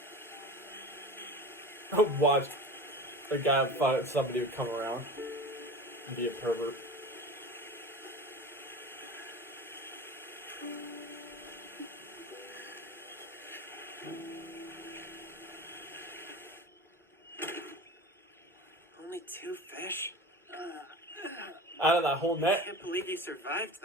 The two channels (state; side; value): normal; both; correlation 0.33